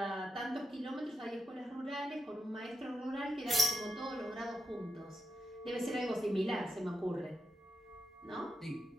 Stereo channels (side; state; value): both; normal; correlation 0.84